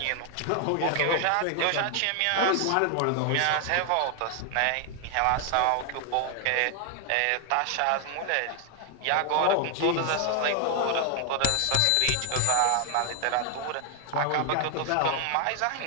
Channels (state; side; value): different; both; correlation 0.00